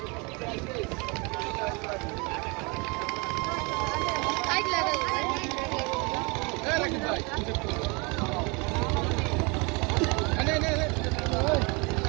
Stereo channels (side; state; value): left; quieter; 29.3 dB